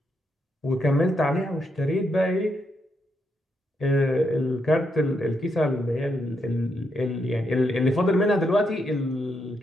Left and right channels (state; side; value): normal; both; correlation 0.80